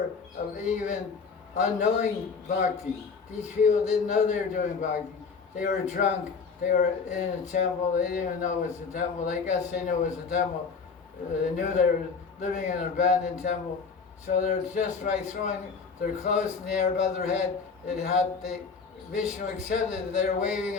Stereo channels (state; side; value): quieter; right; 5.2 dB